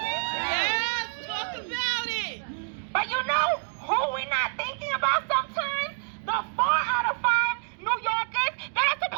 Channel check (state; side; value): silent; left; 56 dB below the other